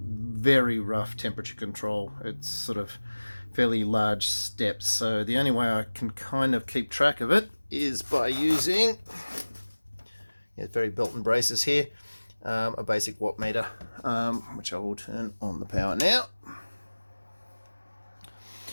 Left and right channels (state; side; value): inverted; both; correlation -1.00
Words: rough temperature control. It's sort of fairly large steps, so the only way I can kind of keep track of it is by using, very belt and braces here, a basic watt meter, which I will turn on the power now.